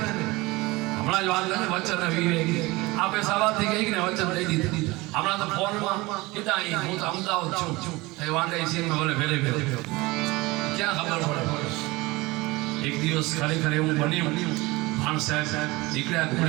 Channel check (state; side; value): quieter; left; 22.1 dB